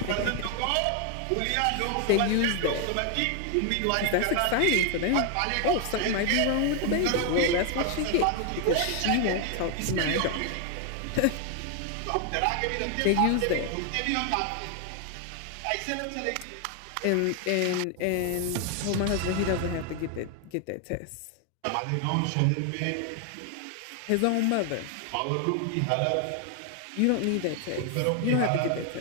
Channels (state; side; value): different; both; correlation 0.00